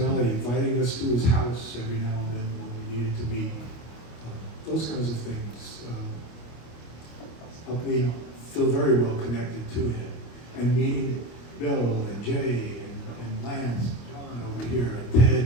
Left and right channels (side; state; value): right; late; 25 ms